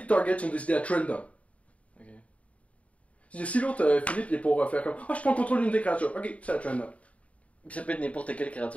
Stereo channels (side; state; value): right; late; 0.066 ms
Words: targets sont décidés à Trendom. Ok. Si l'autre, Philippe, il est pour faire comme je prends le contrôle d'une des créatures. Ok, c'est à Trendom. Ça peut être n'importe quelle